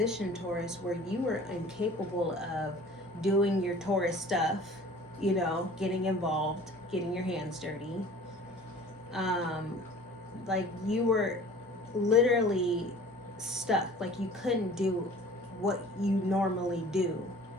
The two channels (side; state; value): both; normal; correlation 0.46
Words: Taurus, where you were incapable of doing your Taurus stuff, you know, getting involved, getting your hands dirty. Like you were literally stuck, like you couldn't do what you normally do.